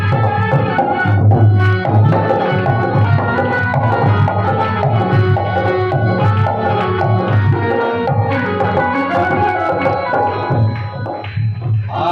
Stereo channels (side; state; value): both; identical; correlation 1.00